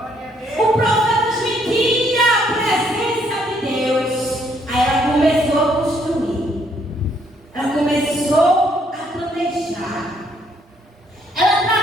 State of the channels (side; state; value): both; normal; correlation 0.68